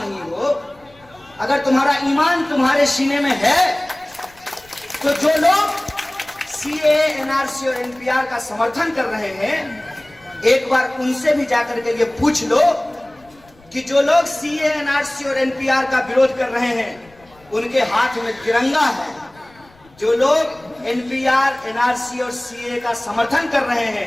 हो, अगर तुम्हारा ईमान तुम्हारे सीने में है, तो जो लोग सीएए, एनआरसी और एनपीआर का समर्थन कर रहे हैं, एक बार उनसे भी जाकर के ये पूछ लो कि जो लोग सीएए, एनआरसी और एनपीआर का विरोध कर रहे हैं उनके हाथ में तिरंगा है। जो लोग एनपीआर, एनआरसी और सीएए का समर्थन कर रहे हैं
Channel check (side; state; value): left; noise; rumble, 28 dB below the sound